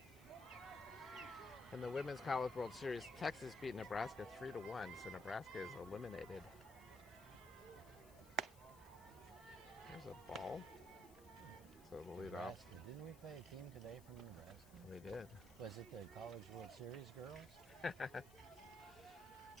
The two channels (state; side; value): noise; left; hiss, 21 dB below the sound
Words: In the Women's College World Series, Texas beat Nebraska 3-1, so Nebraska is eliminated. There's a ball. So the lead off. Nebraska. Didn't we play a team today from Nebraska? We did. Was it the College World Series girls?